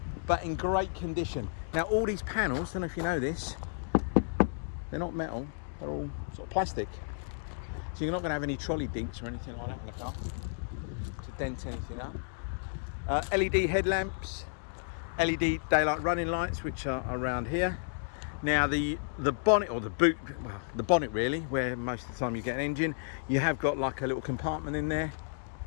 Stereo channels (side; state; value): right; silent; digital silence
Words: But in great condition. Now, all these panels, I don't know if you know this, they're not metal, they're all sort of plastic. So you're not going to have any trolley dinks or anything like that in the car to dent anything up. LED headlamps, LED daylight running lights, which are around here. Now the bonnet, or the boot, well, the bonnet really, where most of the time you get an engine, you have got like a little compartment in there.